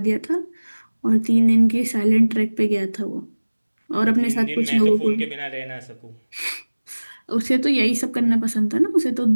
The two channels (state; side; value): inverted; both; correlation -1.00